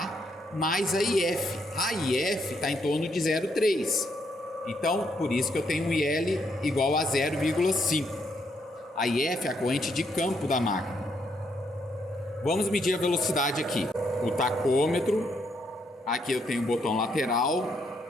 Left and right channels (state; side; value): normal; both; correlation 0.75